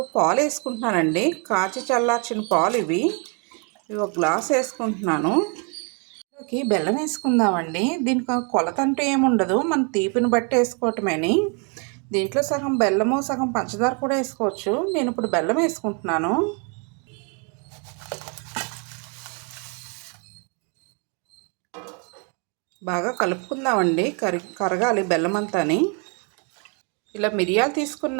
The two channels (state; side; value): quieter; left; 35.5 dB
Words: పాలు వేసుకుంటున్నానండి. కాచి చల్లార్చిన పాలు ఇవి ఒక గ్లాస్ వేసుకుంటున్నాను. దీంట్లోకి బెల్లం వేసుకుందామండి. దీనికి కొలత అంటూ ఏముండదు, మన తీపిని బట్టి వేసుకోవటమేని. దీంట్లో సగం బెల్లము సగం పంచదార కూడా వేసుకోవచ్చు. నేను ఇప్పుడు బెల్లం వేసుకుంటున్నాను. బాగా కలుపుకుందామండి. కరగాలి బెల్లం అంతాని. ఇలా మిరియాలు